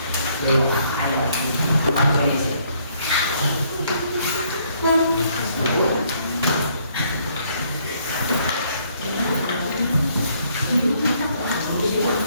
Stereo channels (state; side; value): inverted; both; correlation -0.67